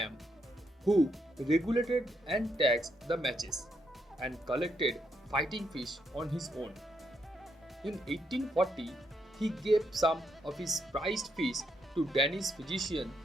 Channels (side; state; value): both; normal; correlation 0.77